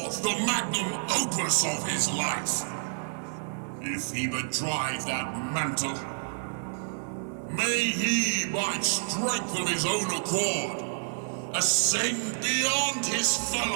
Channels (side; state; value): left; silent; 59 dB below the other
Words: the magnum opus of his life? If he but drive that mantle, may he, by strength of his own accord, ascend beyond his